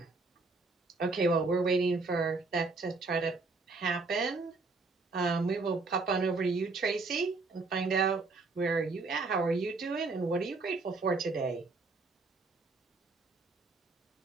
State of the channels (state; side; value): quieter; left; 3.8 dB